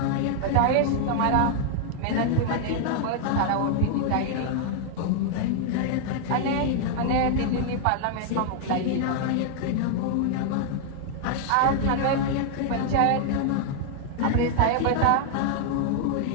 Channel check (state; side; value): different; both; correlation 0.00